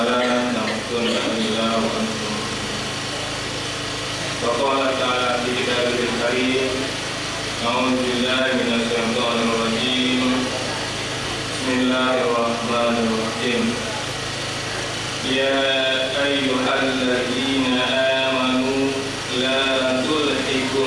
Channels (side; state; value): both; identical; correlation 1.00